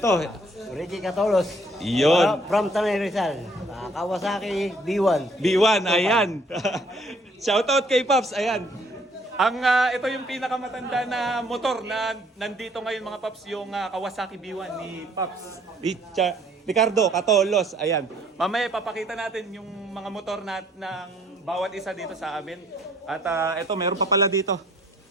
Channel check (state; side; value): normal; both; correlation 0.62